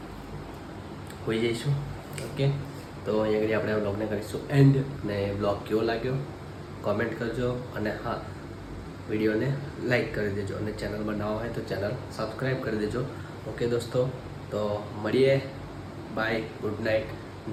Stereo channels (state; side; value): identical; both; correlation 1.00